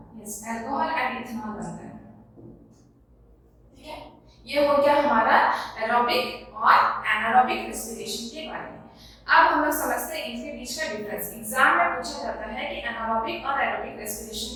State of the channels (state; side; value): identical; both; correlation 1.00